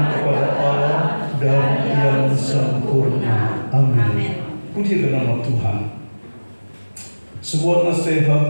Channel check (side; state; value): both; inverted; correlation -1.00